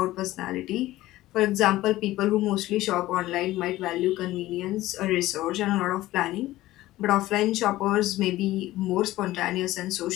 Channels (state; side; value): quieter; right; 16.4 dB